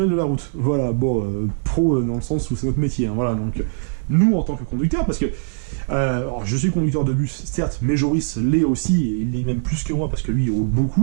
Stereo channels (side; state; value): left; silent; digital silence